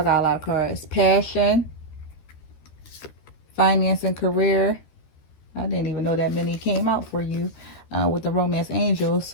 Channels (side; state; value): right; late; 13 ms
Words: got a lot of cards. Passion, finance and career. I didn't even know that many came out for you with the romance angel.